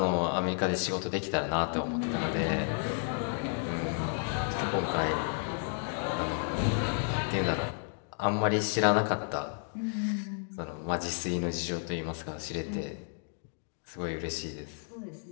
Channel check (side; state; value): right; silent; 56 dB below the other